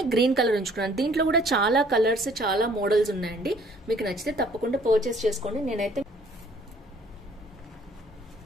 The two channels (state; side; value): normal; both; correlation 0.58